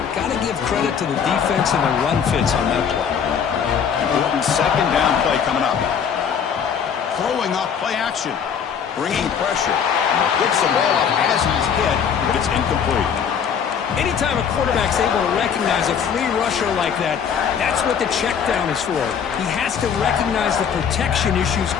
Got to give credit to the defense and the run fits on that play. Important 2nd down play coming up. Throwing off play action. Bringing pressure. Gets the ball up as he's hit, but it's incomplete. Anytime a quarterback's able to recognize a free rusher like that, that's what the check down is for. He has to recognize the protection issues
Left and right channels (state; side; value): quieter; right; 7.4 dB